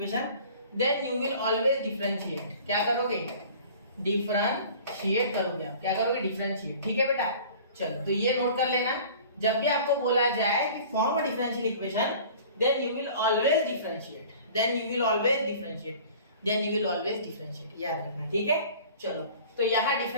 then you will always differentiate. क्या करोगे? डिफरेंशिएट करोगे आप, क्या करोगे? डिफरेंशिएट, ठीक है बेटा। चलो तो ये नोट कर लेना, जब भी आपको बोला जाए कि form a differential equation, then you will always differentiate, then you will always differentiate, then you will always differentiate, याद रखना, ठीक है। चलो तो यहाँ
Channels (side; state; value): both; inverted; correlation -0.45